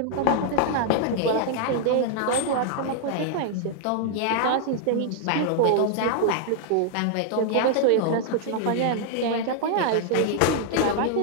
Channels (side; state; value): both; different; correlation -0.01